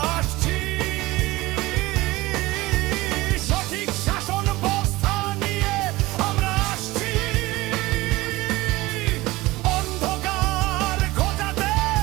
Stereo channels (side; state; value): left; quieter; 19.8 dB